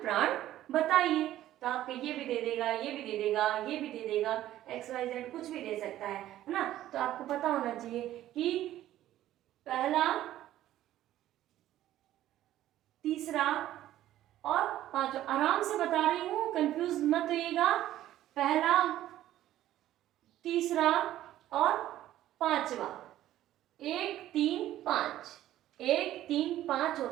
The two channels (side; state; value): left; quieter; 13.5 dB